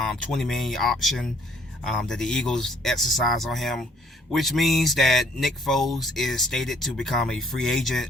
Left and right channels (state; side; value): normal; both; correlation 0.62